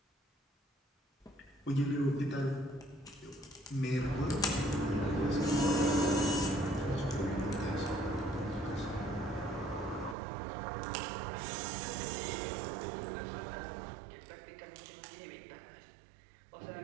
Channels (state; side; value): drops out; left; at 10.2 s